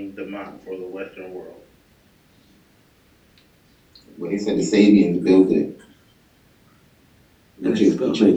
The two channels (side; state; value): both; identical; correlation 1.00